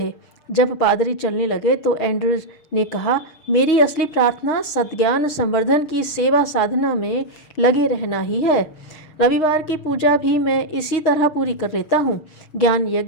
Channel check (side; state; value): right; late; 6.3 ms